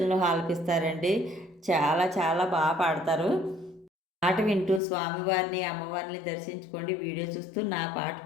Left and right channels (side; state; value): right; drops out; at 4.8 s